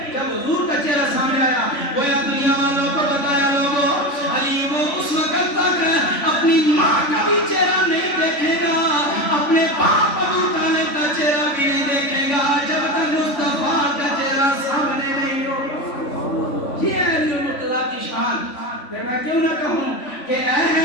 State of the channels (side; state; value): right; late; 3.5 ms